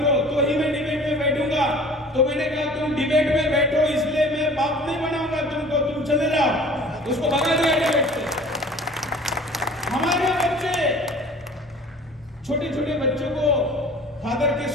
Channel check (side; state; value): both; normal; correlation 0.46